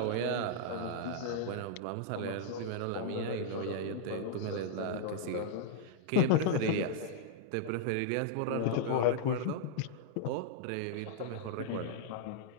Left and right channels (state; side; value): different; both; correlation -0.01